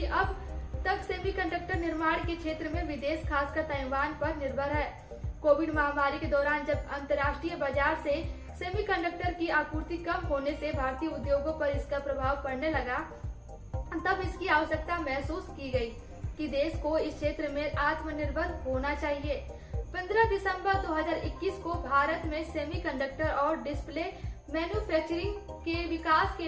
अब तक सेमीकंडक्टर निर्माण के क्षेत्र में विदेश, खासकर ताइवान पर निर्भर है। कोविड महामारी के दौरान जब अंतर्राष्ट्रीय बाजार से सेमीकंडक्टर की आपूर्ति कम होने से भारतीय उद्योगों पर इसका प्रभाव पड़ने लगा, तब इसकी आवश्यकता महसूस की गई कि देश को इस क्षेत्र में आत्मनिर्भर होना चाहिए। 15 दिसंबर 2021 को भारत में सेमीकंडक्टर और डिस्प्ले मैन्युफैक्चरिंग के विकास के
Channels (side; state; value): both; identical; correlation 1.00